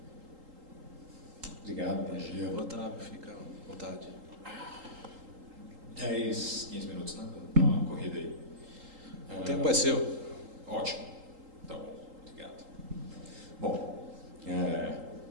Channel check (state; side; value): late; left; 3.8 ms